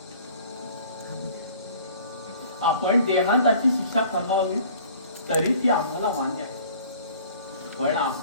आपण देहांताची शिक्षा फरमावली तरी ती आम्हाला मान्य आहे. पण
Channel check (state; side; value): inverted; both; correlation -0.50